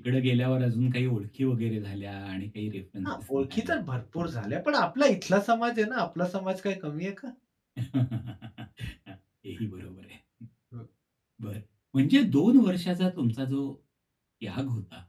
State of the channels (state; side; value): identical; both; correlation 1.00